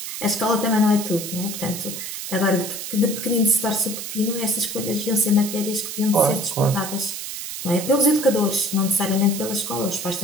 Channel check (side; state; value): right; noise; hiss, 7 dB below the sound